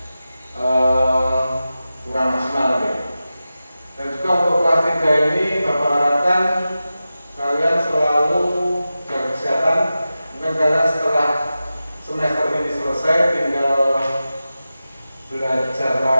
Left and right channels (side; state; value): both; inverted; correlation -0.93